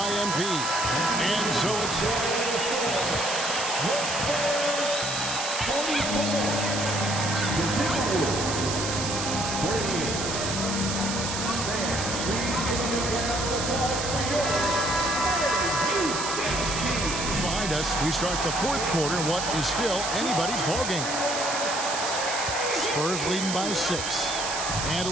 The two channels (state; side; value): noise; right; hiss, 3 dB below the sound